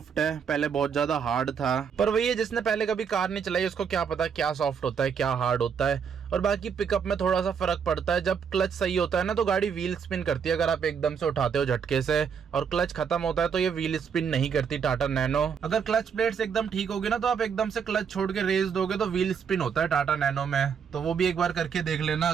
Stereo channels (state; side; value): quieter; left; 6.9 dB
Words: है, पहले बहुत ज्यादा हार्ड था। पर वही है, जिसने पहले कभी कार नहीं चलाई उसको क्या पता क्या सॉफ्ट होता है क्या हार्ड होता है। और बाकी पिकअप में थोड़ा सा फर्क पड़ता है। जब क्लच सही होता है ना तो गाड़ी व्हील स्पिन करती है, अगर आप एकदम से उठाते हो झटके से। और क्लच खत्म होता है तो ये व्हील स्पिन नहीं करती टाटा नैनो। अगर क्लच प्लेट्स एकदम ठीक होगी ना तो आप एकदम से क्लच छोड़ के रेस दोगे तो व्हील स्पिन होता है टाटा नैनो में। तो वो भी एक बार करके देख लेना।